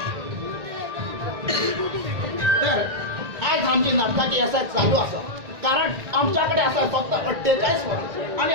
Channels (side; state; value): left; late; 1.9 ms